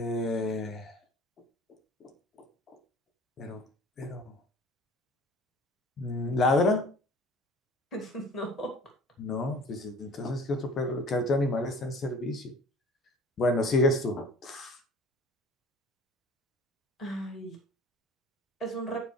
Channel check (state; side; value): normal; both; correlation 0.45